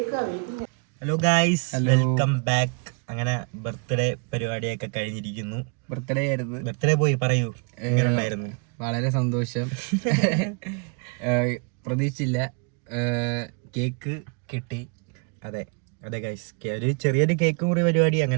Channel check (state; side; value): quieter; left; 35.2 dB